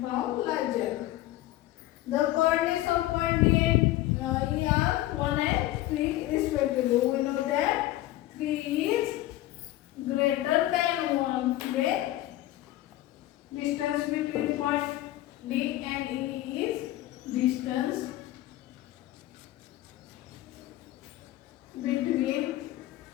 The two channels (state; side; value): quieter; right; 15.5 dB